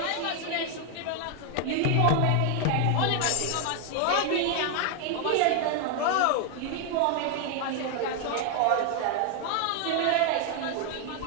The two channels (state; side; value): different; both; correlation 0.01